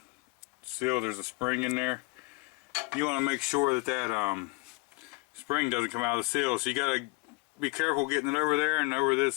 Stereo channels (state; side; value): quieter; right; 27.0 dB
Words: seal, there's a spring in there, you want to make sure that that spring doesn't come out of the seal. So you got to be careful getting it over there and over